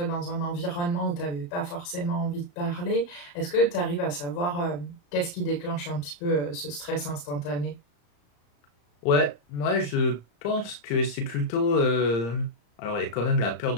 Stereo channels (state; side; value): late; right; 34 ms